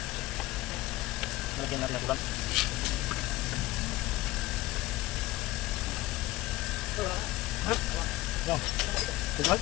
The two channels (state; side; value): quieter; right; 17.9 dB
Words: Malagyan natin ang bulan. Yan. Tingnan.